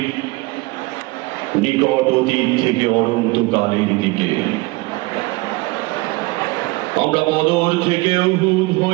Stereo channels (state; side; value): quieter; left; 23.7 dB